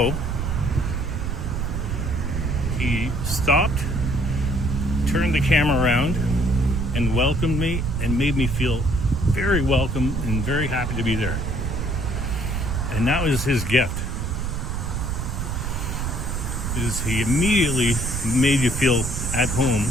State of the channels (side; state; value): right; noise; rumble, 2 dB below the sound